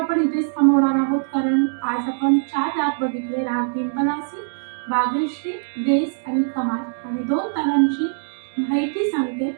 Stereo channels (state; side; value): silent; left; digital silence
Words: इथेच थांबवणार आहोत, कारण आज आपण 4 राग बघितले, राग पिंपलासी, बागेश्री, देस आणि खमाज, आणि 2 तालांची माहिती सांगते